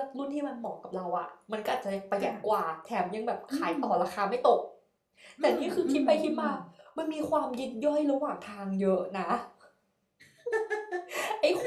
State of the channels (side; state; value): both; identical; correlation 1.00